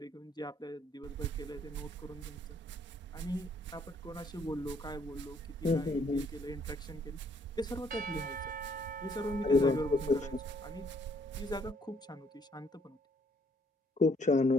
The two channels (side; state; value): both; normal; correlation 0.66